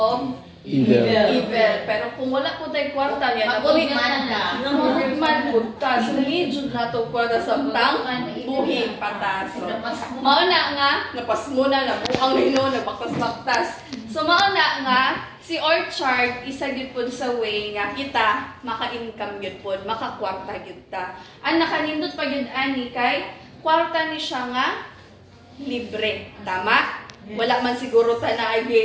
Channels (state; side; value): identical; both; correlation 1.00